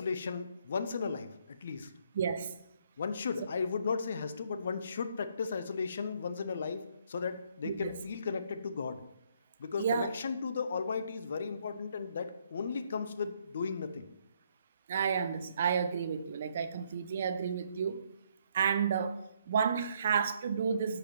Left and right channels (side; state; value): both; inverted; correlation -0.70